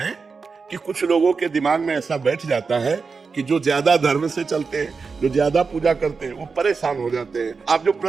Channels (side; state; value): left; quieter; 4.9 dB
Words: कि कुछ लोगों के दिमाग में ऐसा बैठ जाता है कि जो ज्यादा धर्म से चलते हैं, जो ज्यादा पूजा करते हैं, वो परेशान हो जाते हैं। आप जो